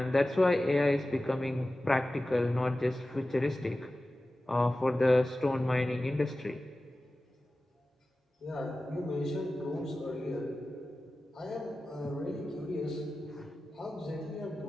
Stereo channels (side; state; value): both; normal; correlation 0.95